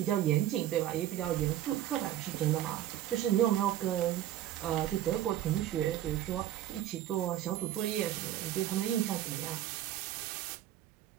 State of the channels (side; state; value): left; quieter; 12.5 dB